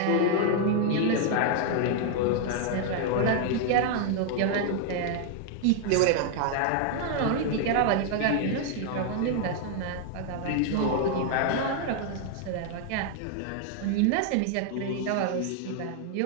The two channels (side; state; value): both; different; correlation 0.00